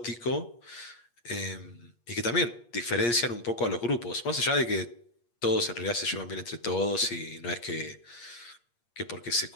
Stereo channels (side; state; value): right; late; 8.5 ms